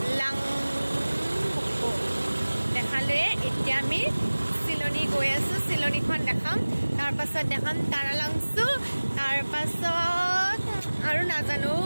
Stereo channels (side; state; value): both; inverted; correlation -1.00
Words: দেখালোৱে। এতিয়া আমি চিলনী গৈ আছোঁ, চিলনীখন দেখাম। তাৰপাছত দেখাম তাৰালাংচু, তাৰপাছত আৰু নাজানো